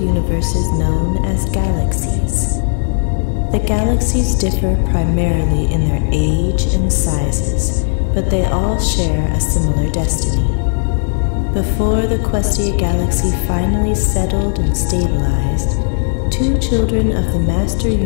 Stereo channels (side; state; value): right; silent; digital silence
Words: known as galaxies. The galaxies differ primarily in their age and sizes, but they all share a similar destiny. Before the Questia galaxy finally settled and stabilized, 2 children of the Master